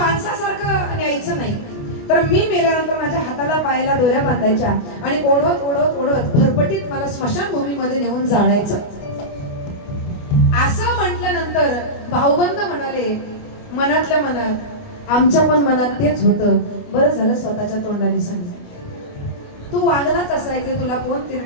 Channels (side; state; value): right; late; 29 ms